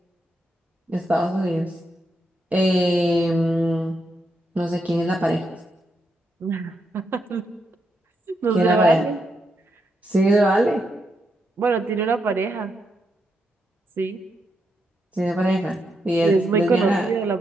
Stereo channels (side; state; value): both; normal; correlation 0.82